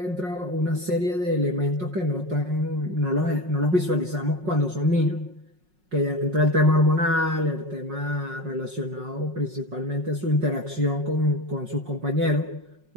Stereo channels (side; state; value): left; late; 5.5 ms